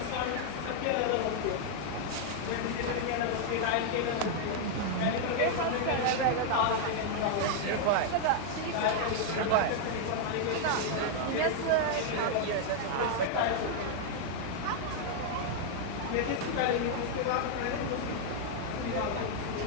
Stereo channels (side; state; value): both; different; correlation 0.00